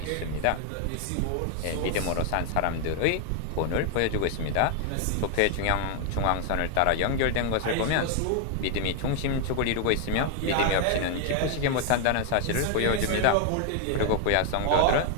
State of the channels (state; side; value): different; both; correlation 0.00